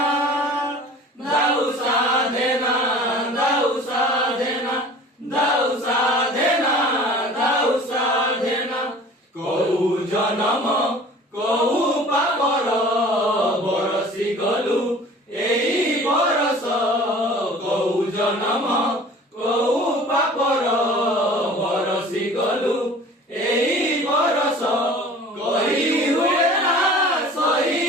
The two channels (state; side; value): normal; both; correlation 0.45